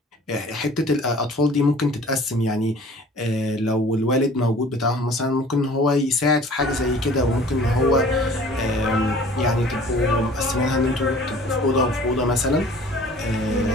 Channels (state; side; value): normal; both; correlation 0.48